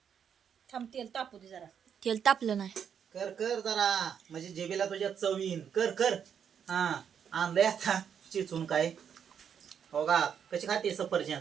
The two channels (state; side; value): quieter; left; 7.9 dB